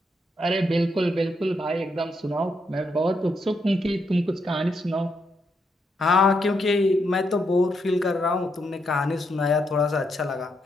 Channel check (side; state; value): both; normal; correlation 0.79